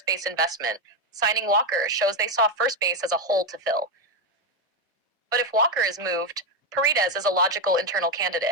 base investment. Signing Walker shows they saw first base as a hole to fill. But if Walker is moved, Paredes is a logical internal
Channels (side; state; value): both; normal; correlation 0.07